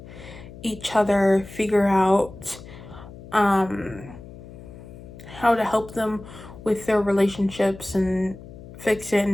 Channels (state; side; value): noise; left; hum, 16 dB below the sound